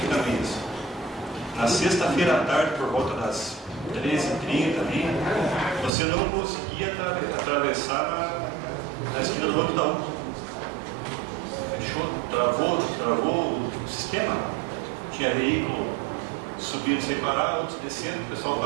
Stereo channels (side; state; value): left; drops out; at 5.9 s